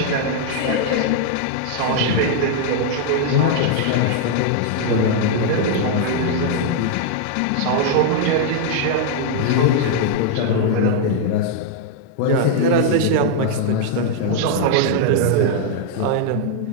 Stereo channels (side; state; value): both; different; correlation 0.00